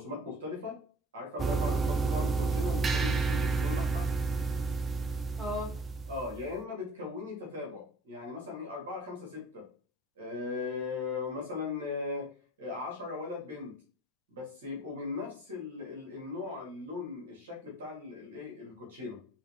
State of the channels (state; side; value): normal; both; correlation 0.53